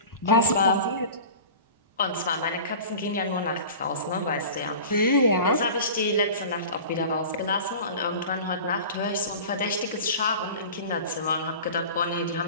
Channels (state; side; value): inverted; both; correlation -0.38